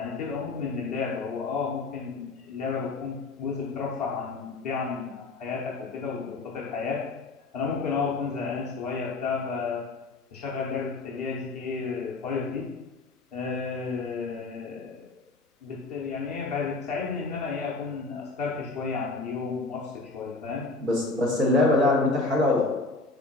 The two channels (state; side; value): quieter; right; 3.4 dB